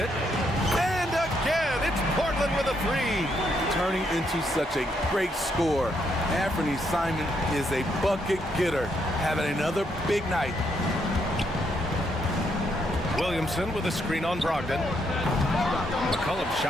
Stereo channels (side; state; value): both; normal; correlation 0.76